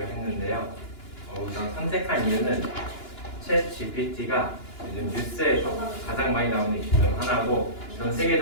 했는데요. 우선 선택한 이유는 챗 GPT가 요즘 뉴스에서 가장 많이 나오는 이슈 중 하나고 전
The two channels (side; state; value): right; late; 2.9 ms